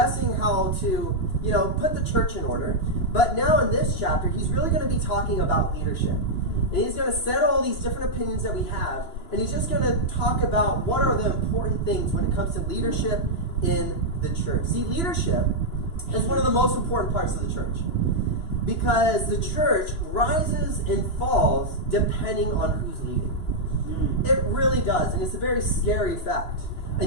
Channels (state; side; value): late; right; 2.9 ms